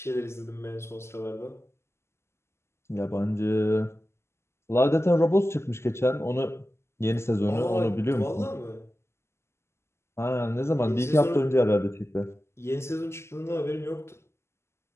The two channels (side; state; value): right; late; 0.13 ms